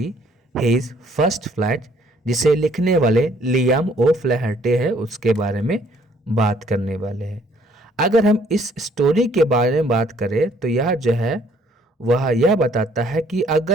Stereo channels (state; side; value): normal; both; correlation 0.62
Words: हिज फर्स्ट फ्लाइट, जिसे लिखने वाले लियाम ओ फ्लैहर्टे है, उसके बारे में बात करने वाले हैं। अगर हम इस स्टोरी के बारे में बात करें तो यह जो है वह यह बताता है कि